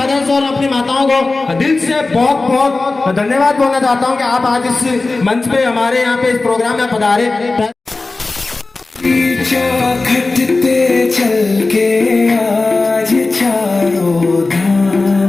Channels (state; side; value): quieter; right; 3.5 dB